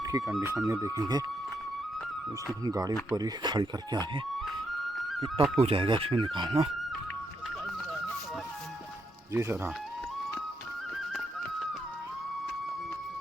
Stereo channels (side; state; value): both; normal; correlation 0.79